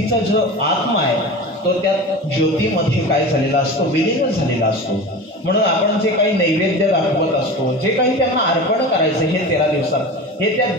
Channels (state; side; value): normal; both; correlation 0.31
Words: जो आत्मा आहे, तो त्या ज्योतीमध्ये काय झालेला असतो, विलीन झालेला असतो. म्हणून आपण जे काही नैवेद्य दाखवत असतो, जे काही त्यांना अर्पण करायचं हे 13 दिवसात, हे त्या